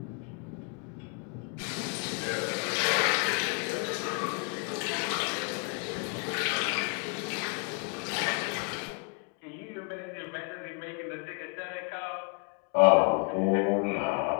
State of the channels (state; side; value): quieter; right; 35.8 dB